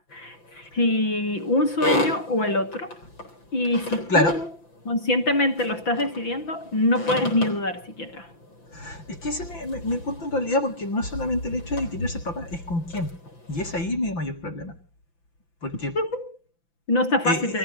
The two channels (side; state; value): right; late; 5.9 ms